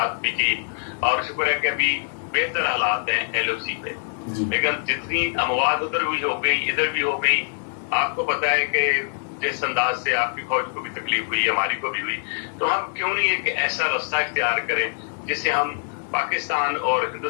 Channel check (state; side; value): silent; right; digital silence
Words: بھی کی, اور شکر ہے کہ ابھی بہتر حالات ہیں ایل او سی پہ. لیکن جتنی اموات ادھر بھی ہو گئی ادھر بھی ہو گئی, آپ کو پتا ہے کہ جس انداز سے آپ کی فوج کو بھی تکلیف ہوئی, ہماری کو بھی ہوئی, تو ہم کیوں نہیں ایک ایسا رستہ اختیار کریں جس سے ہم پاکستان اور